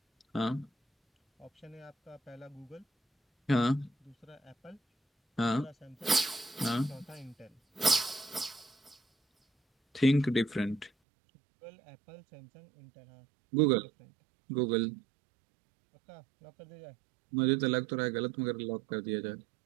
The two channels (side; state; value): left; drops out; at 10.9 s